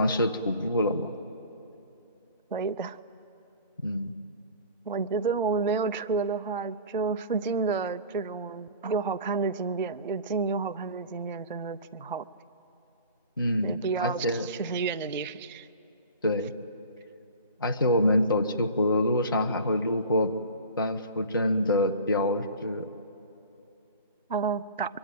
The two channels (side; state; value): both; inverted; correlation -0.41